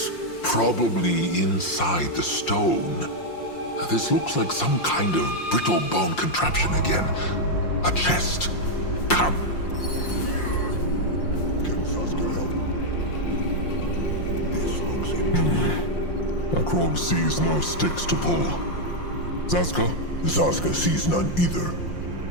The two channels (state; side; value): late; right; 5.7 ms